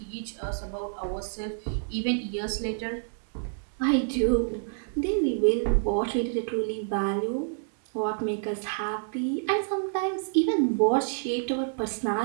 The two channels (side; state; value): left; silent; digital silence